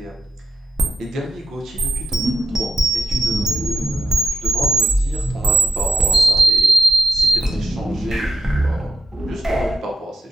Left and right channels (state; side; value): normal; both; correlation 0.88